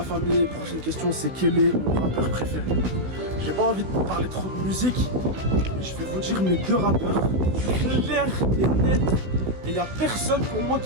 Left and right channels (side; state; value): left; late; 16 ms